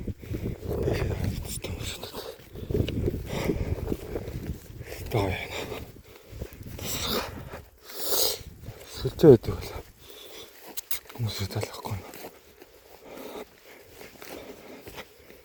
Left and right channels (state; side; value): identical; both; correlation 1.00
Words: Тийш хэвчтэй хүмүүс одоо. Тоо яана. Сүлжээ байдаг бол хүмүүс талахгүй.